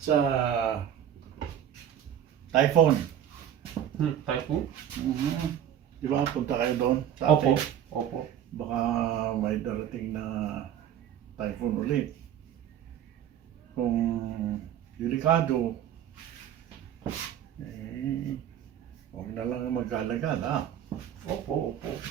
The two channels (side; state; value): left; quieter; 10.1 dB